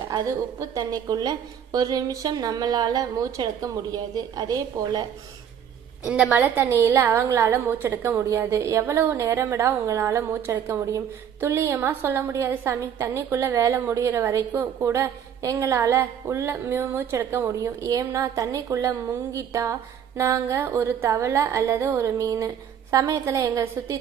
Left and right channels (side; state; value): left; quieter; 8.7 dB